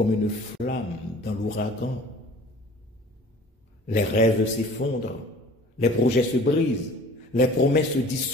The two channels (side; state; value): both; normal; correlation 0.47